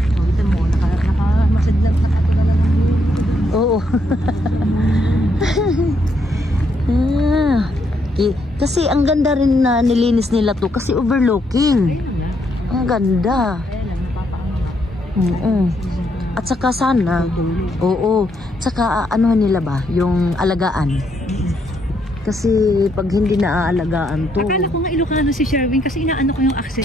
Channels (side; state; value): both; normal; correlation 0.75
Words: mo, nakamasad lang, nakatulala lang. Oo. Kasi ang ganda rin na nilinis nila to kasi overlooking. Ang ganda. At saka sana, oo, saka ano nila ba, yung alagaan. Kasi pag hindi naaalagaan to. Akala ko nga Ilocano si Sherwin kasi inaano ko yung